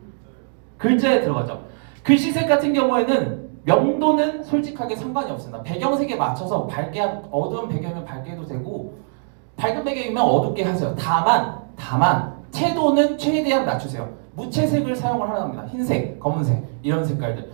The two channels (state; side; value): silent; left; digital silence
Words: 글자에 들어가죠. 글씨색 같은 경우에는 명도는 솔직하게 상관이 없습니다. 배경색에 맞춰서 어두운 배경이면 밝게 해도 되고 밝은 배경이면 어둡게 하세요. 다만 채도는 최대한 낮추세요. 무채색을 사용을 하라는 겁니다. 흰색, 검은색 이런 색깔들.